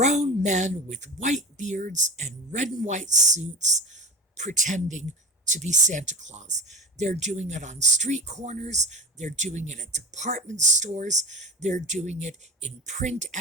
men with white beards and red and white suits pretending to be Santa Claus. They're doing it on street corners. They're doing it at department stores. They're doing it in print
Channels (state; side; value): normal; both; correlation 0.32